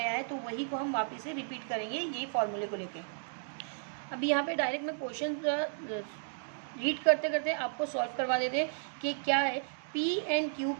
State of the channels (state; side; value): silent; left; digital silence